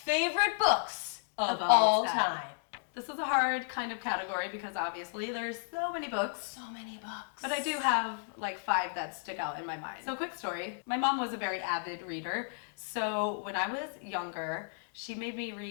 books of all time. This is a hard kind of category because obviously there's so many books. So many books. But I do have like 5 that stick out in my mind. So quick story. My mom was a very avid reader. So when I was younger, she made me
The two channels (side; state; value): right; silent; digital silence